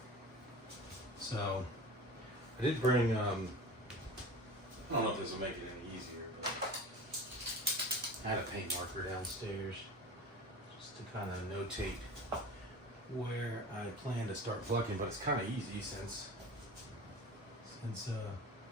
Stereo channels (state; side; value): normal; both; correlation 0.35